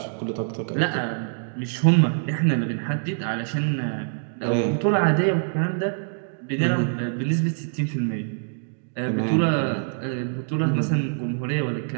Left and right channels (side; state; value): left; silent; digital silence